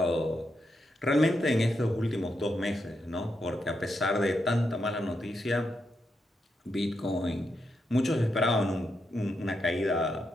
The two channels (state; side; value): normal; both; correlation 0.83